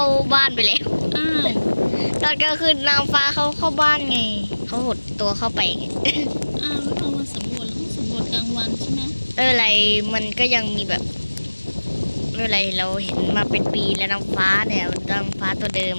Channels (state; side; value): inverted; both; correlation -1.00